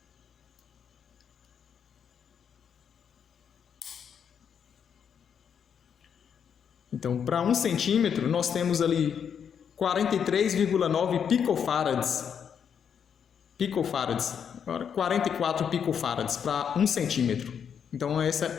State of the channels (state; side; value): quieter; right; 7.6 dB